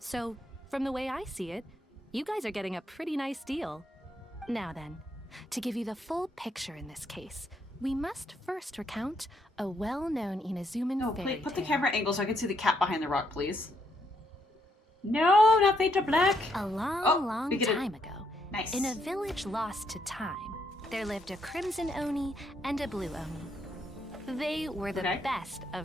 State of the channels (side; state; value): both; normal; correlation 0.75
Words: from the way I see it, you guys are getting a pretty nice deal. Now then, to give you the full picture in this case, we must first recount a well-known Inazuman No, fairy please put the tale. camera angle so I can see the cat behind the rock, please. No, not fade to black. A long, Oh, long we get it. time ago, Nice. in a village lost to time, there lived a crimson Oni and a blue Oni. They were the Okay. best